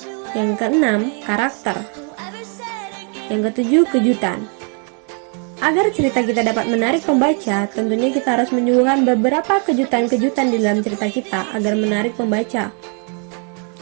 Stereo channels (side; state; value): left; quieter; 39.6 dB